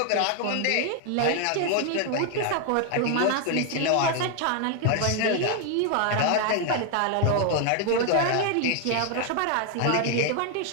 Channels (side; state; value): both; different; correlation 0.00